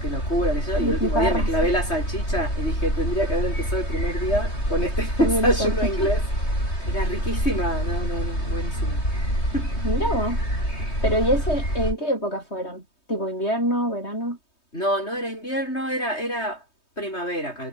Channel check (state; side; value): late; right; 3.2 ms